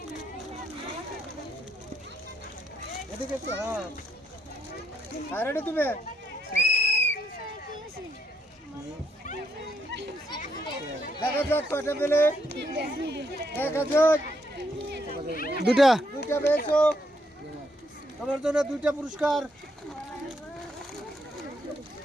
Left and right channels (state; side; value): normal; both; correlation 0.76